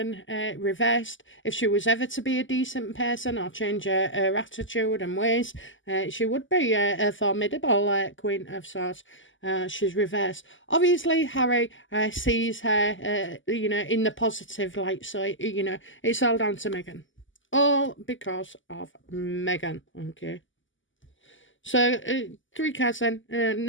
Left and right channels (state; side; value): late; right; 0.56 ms